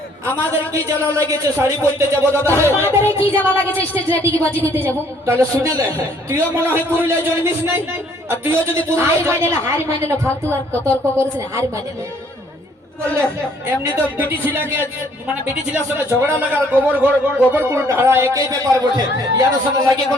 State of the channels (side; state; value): both; normal; correlation 0.62